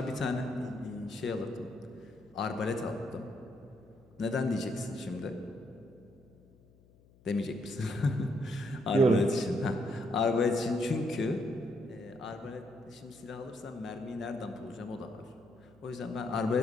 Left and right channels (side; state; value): left; noise; hum, 27 dB below the sound